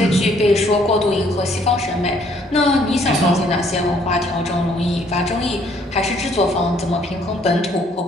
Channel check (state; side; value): normal; both; correlation 0.64